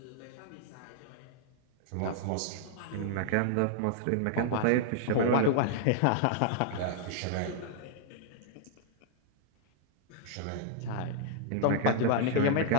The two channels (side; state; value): both; different; correlation -0.01